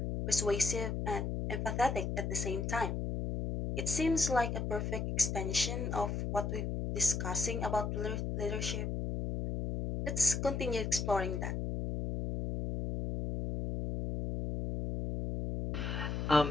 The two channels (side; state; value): left; noise; hum, 2 dB below the sound